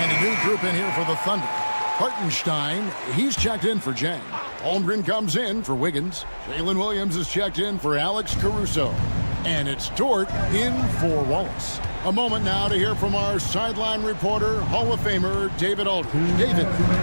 And a new group in here for the Thunder. Hartenstein, he's checked in for Jang. Holmgren comes in for Wiggins. Jalen Williams is checked in for Alex Caruso. And it's Dort in for Wallace. A moment now to hear from our sideline reporter, Hall of Famer David Aldridge. David.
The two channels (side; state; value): both; inverted; correlation -1.00